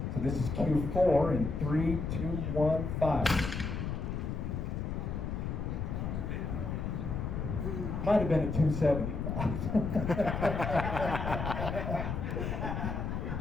So this is Q4 in 3, 2, 1, fire. Might have been a 275.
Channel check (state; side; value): noise; left; rumble, 3 dB below the sound